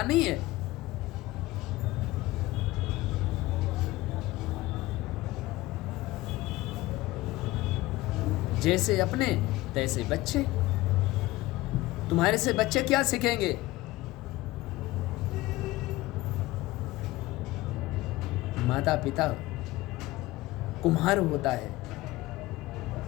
नहीं है? जैसे अपने तैसे बच्चे। तुम्हारे से बच्चे क्या सीखेंगे? माता पिता कुम्हार होता है,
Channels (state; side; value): quieter; right; 18.6 dB